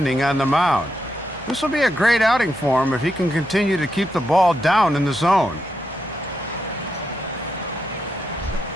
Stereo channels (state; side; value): normal; both; correlation 0.83